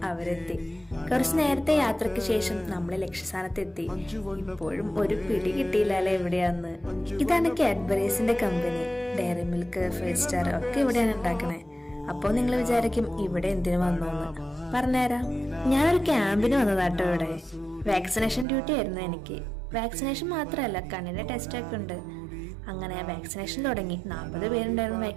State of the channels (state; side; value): drops out; left; at 18.4 s